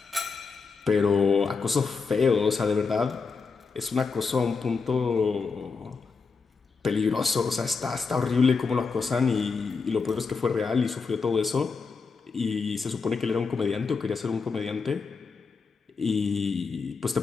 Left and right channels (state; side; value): quieter; right; 4.8 dB